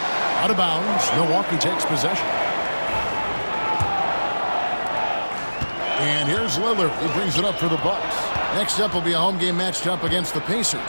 Out of bounds, Milwaukee takes possession. And here's Lillard, who brings it up for the Bucks. Next up will be a home game matched up against the Pacers.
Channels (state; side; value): inverted; both; correlation -1.00